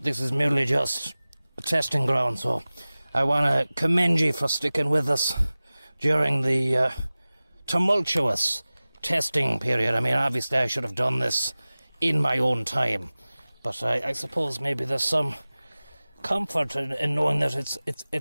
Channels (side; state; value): both; inverted; correlation -0.98